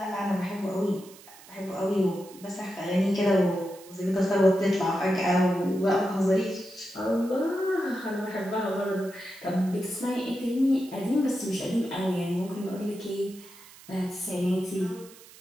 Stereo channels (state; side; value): noise; right; hiss, 21 dB below the sound